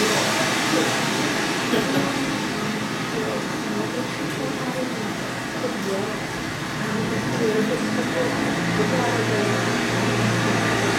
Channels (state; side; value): identical; both; correlation 1.00